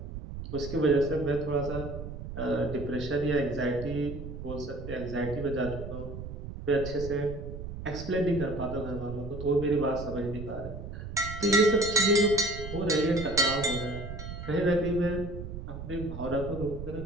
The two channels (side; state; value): right; noise; rumble, 9 dB below the sound